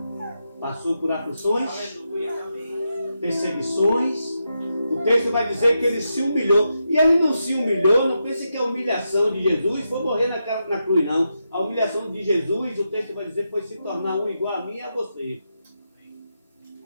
passou por aflições, perseguições. O texto vai dizer que ele se humilhou. E ele não se humilhou, não pense que a humilhação de Jesus foi morrer na cruz, não. A humilhação de Jesus, o texto vai dizer, foi se tornar um igual a mim e a você.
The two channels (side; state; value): both; inverted; correlation -0.86